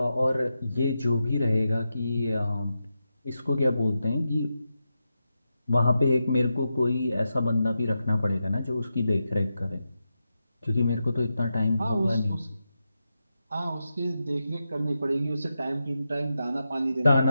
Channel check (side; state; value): both; inverted; correlation -0.88